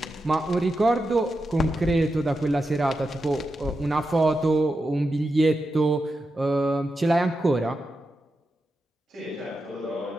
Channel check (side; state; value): both; normal; correlation 0.88